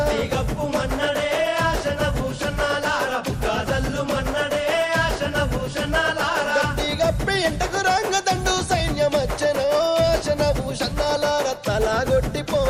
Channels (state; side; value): identical; both; correlation 1.00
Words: గప్పు మన్నడే ఆశన భూషణాలార బుక్క జల్లు మన్నడే ఆశన భూషణాలార గప్పిగప్పి ఇంటకు రంగదండు సైన్యమచ్చనో ఆశన భూషణాలార